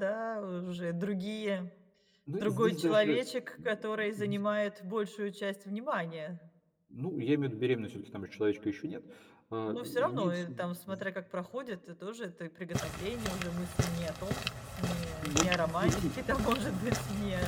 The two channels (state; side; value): identical; both; correlation 1.00